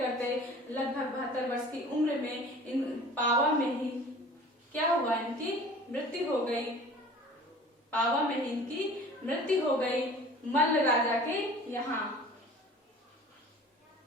लगभग 72 वर्ष की उम्र में इन पावा में ही क्या हुआ, इनकी मृत्यु हो गई। पावा में ही इनकी मृत्यु हो गई मल्ल राजा के यहाँ।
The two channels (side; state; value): both; normal; correlation 0.45